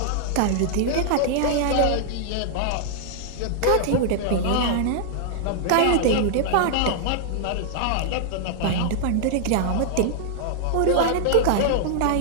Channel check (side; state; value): both; different; correlation -0.01